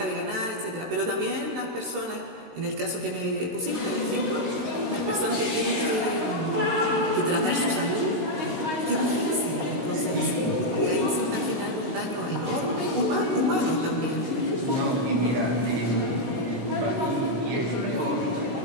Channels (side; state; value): left; late; 16 ms